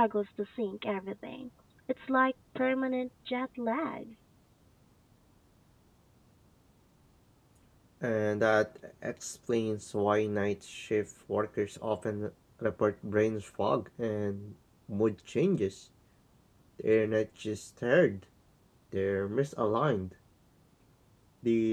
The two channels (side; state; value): both; identical; correlation 1.00